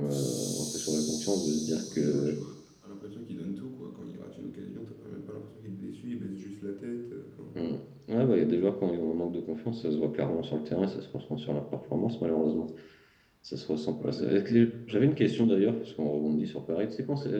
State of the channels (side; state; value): both; identical; correlation 1.00